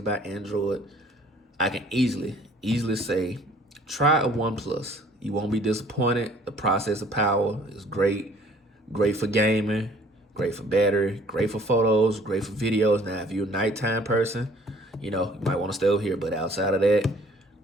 Android, I can easily say, try a OnePlus. You won't be disappointed. The processor power is great. Great for gaming, great for battery, great for photos, great for videos. Now, if you're a nighttime person, you might want to stay over here. But outside of that,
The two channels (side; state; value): both; normal; correlation 0.56